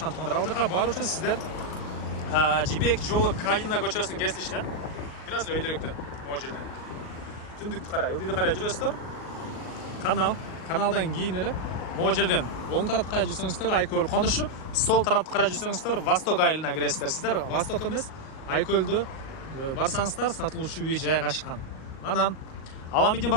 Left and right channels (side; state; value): right; late; 38 ms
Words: туугандар. Ал жака баруу үчүн сиздер Жибек жолу Калина көчөсүнүн кесилишинен бир аз эле өйдөрөктөн могу жерден түндүктү карай, ылдыйды карай жүрөсүздөр. Каналдан кийин эле могу жерден оң тарапты карай жүрсөңүздөр Айкөл конушу, сол тарапты карай жүрсөңүздөр Восток айылына киресиздер. Сиздер Восток эмес, Айкөлдө барсаңыздар сатылуучу үй жайгашкан. Анан Аламидин